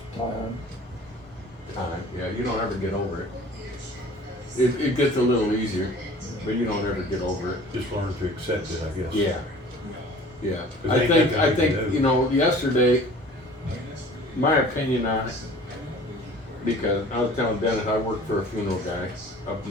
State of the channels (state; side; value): normal; both; correlation 0.46